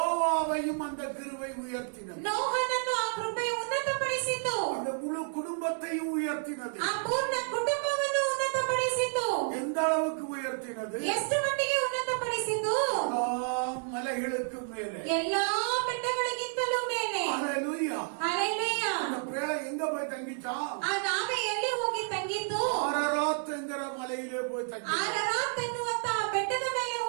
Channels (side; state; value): left; silent; 57 dB below the other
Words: அந்த கிருபை உயர்த்தினது. ನೋಹನನ್ನು ಆ ಕೃಪೆಯು ಉನ್ನತಪಡಿಸಿತು. அந்த முழு குடும்பத்தையும் உயர்த்தினது. ಆ ಪೂರ್ಣ ಕುಟುಂಬವನ್ನು ಉನ್ನತಪಡಿಸಿತು. எந்த அளவுக்கு உயர்த்தினது? ಎಷ್ಟು ಮಟ್ಟಿಗೆ ಉನ್ನತಪಡಿಸಿತು? எல்லா மலைகளுக்கு மேலே, ಎಲ್ಲಾ ಬೆಟ್ಟಗಳಿಗಿಂತಲೂ ಮೇಲೆ. ஹalleluya. ಹalleluya. அந்த பேழை எங்க போய் தங்கிச்சான்? ಆ ನಾವೆ ಎಲ್ಲಿ ಹೋಗಿ ತಂಗಿತು? ஆரராத்ங்கிற மலையிலே போய் தங்கிச்சான். ಆರರಾತ್ ಎನ್ನುವಂತ ಆ ಬೆಟ್ಟದ ಮೇಲೆ